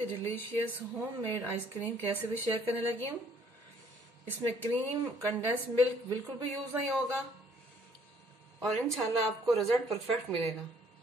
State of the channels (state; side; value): normal; both; correlation 0.62